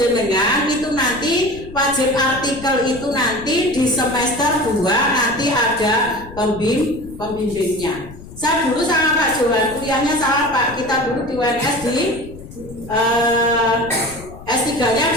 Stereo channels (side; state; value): left; noise; rumble, 16 dB below the sound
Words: itu nanti wajib artikel itu nanti di semester 2 nanti ada pembimbingnya. Saya dulu sama Pak Johan, kuliahnya sama Pak. Kita dulu di UNS di